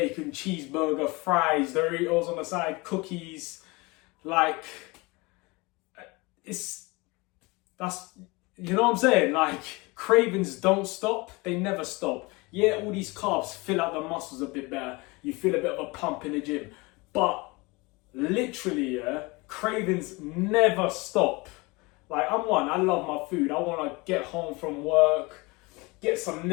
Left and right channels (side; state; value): right; quieter; 25.1 dB